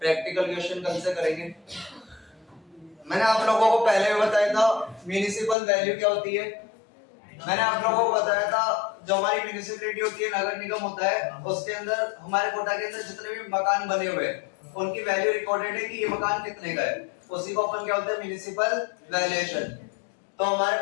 क्वेश्चन कल से करेंगे। मैंने आप लोगों को पहले भी बताया था म्युनिसिपल वैल्यू क्या होती है। मैंने आप लोगों को बताया था जो हमारी म्युनिसिपैलिटी होती है, नगर निगम होता है, उसके अंदर हमारे कोटा के अंदर जितने भी मकान बने हुए हैं उनकी वैल्यू रिकॉर्डेड है कि ये मकान कितने का है, उसी को अपन क्या होता है, म्युनिसिपल वैल्यूएशन। तो हमारे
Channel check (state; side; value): drops out; right; at 5.6 s